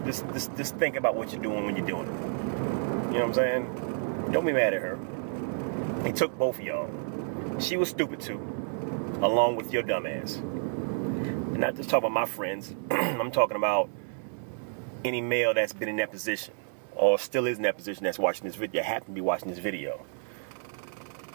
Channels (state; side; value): silent; left; 58 dB below the other